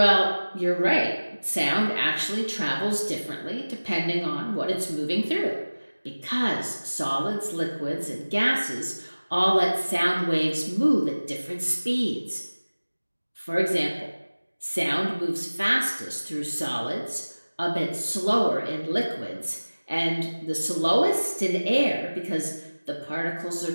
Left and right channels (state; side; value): inverted; both; correlation -1.00